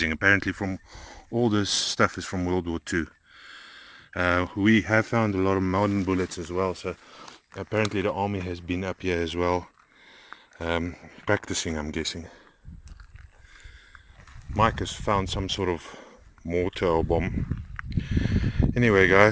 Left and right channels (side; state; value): both; identical; correlation 1.00